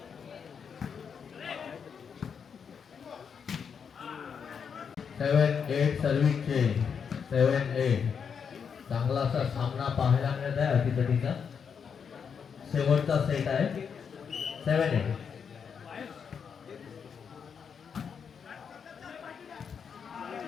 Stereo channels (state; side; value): quieter; right; 6.7 dB